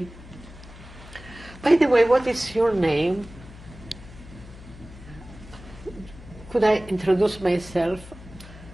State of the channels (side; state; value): left; noise; hum, 17 dB below the sound